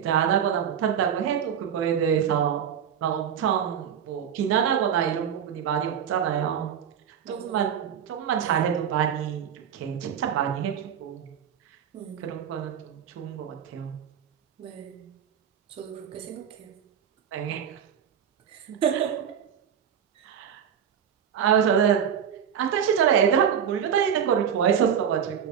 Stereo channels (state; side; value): quieter; left; 8.3 dB